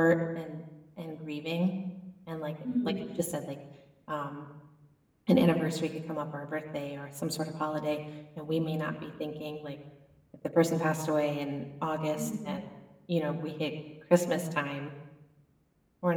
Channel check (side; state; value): both; identical; correlation 1.00